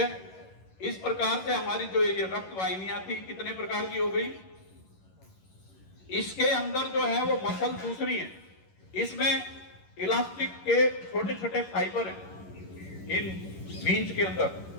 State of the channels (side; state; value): right; late; 11 ms